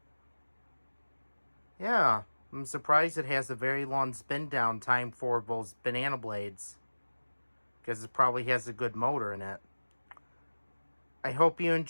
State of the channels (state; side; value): inverted; both; correlation -1.00